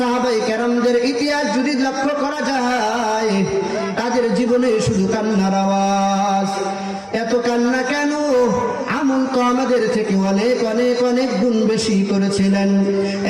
কেরামদের ইতিহাস যদি লক্ষ্য করা যায়, তাদের জীবনে শুধু কান্নার আওয়াজ। এত কান্না কেন? আমল তো আমাদের থেকে অনেক অনেক অনেক গুণ বেশি করেছিলেন,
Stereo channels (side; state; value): both; identical; correlation 1.00